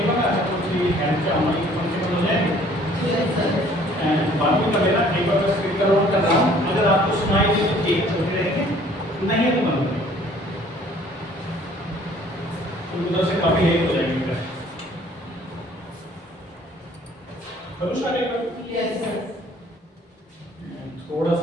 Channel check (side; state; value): both; normal; correlation 0.56